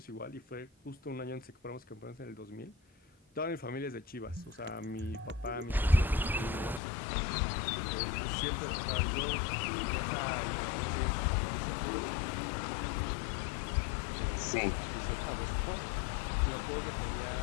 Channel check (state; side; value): drops out; right; at 6.8 s